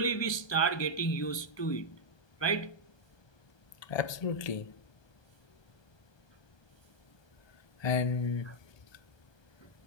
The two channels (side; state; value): right; late; 1.2 ms